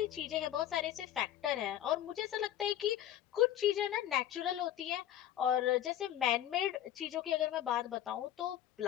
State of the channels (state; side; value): quieter; right; 11.7 dB